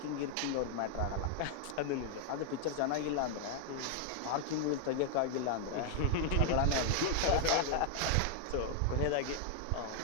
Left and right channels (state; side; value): different; both; correlation 0.00